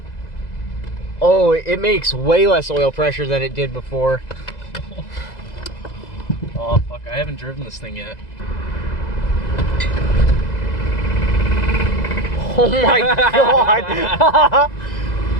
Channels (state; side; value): late; right; 2.0 ms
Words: Oh, it makes way less oil pressure than it did before. Oh, fuck. I haven't driven this thing yet. Oh my god!